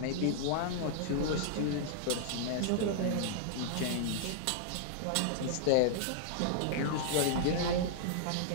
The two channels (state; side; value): different; both; correlation -0.01